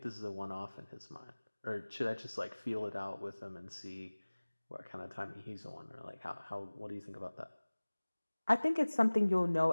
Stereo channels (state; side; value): inverted; both; correlation -1.00